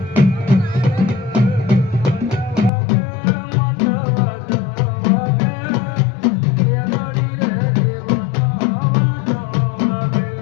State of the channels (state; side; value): drops out; right; at 2.7 s